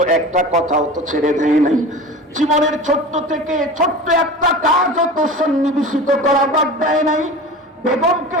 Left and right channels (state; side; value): normal; both; correlation 0.34